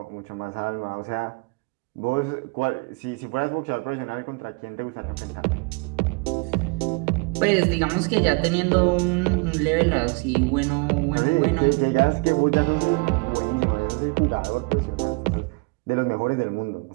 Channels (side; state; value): left; quieter; 30.2 dB